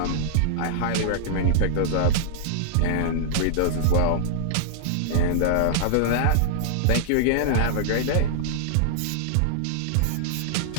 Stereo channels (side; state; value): both; different; correlation -0.01